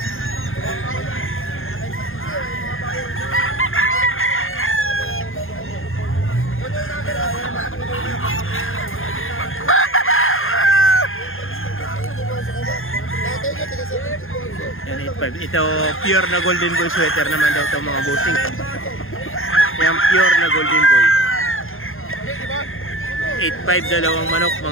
Yan, 8,500. Ito pure na golden boy sweater naman daw ito mga bossing. Yan, pure na golden boy. 8,500 dalawang manok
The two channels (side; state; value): right; late; 0.60 ms